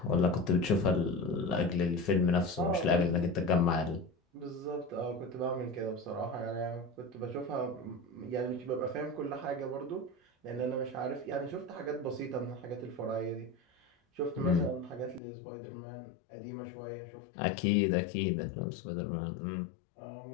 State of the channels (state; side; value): drops out; right; at 15.2 s